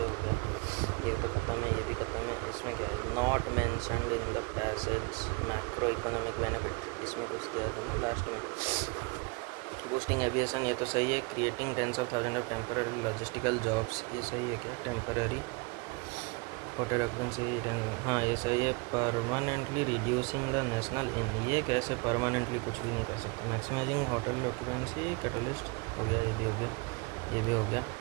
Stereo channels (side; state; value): left; quieter; 28.9 dB